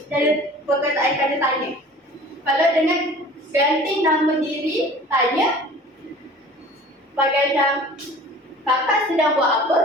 Dari perkataan kata tanya. Kalau dengan ganti nama diri, tanya bagai macam kakak sedang buat apa?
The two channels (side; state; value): both; normal; correlation 0.44